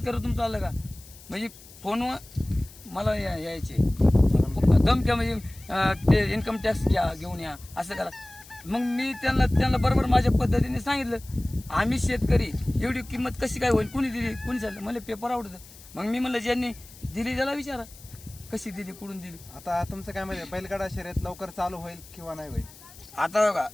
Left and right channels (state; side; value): noise; left; hiss, 20 dB below the sound